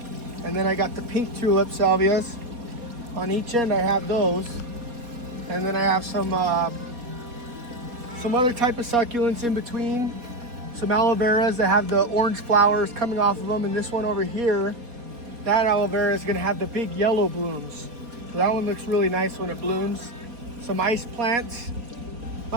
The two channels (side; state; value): left; late; 4.2 ms